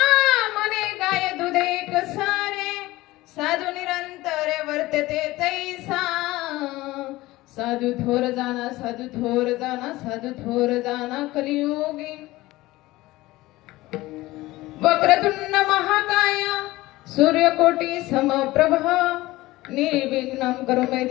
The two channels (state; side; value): quieter; right; 18.6 dB